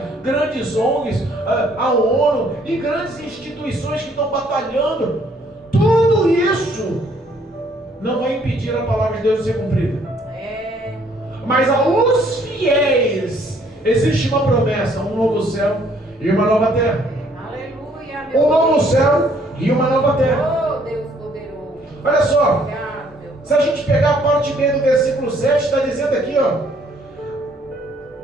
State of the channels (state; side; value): normal; both; correlation 0.64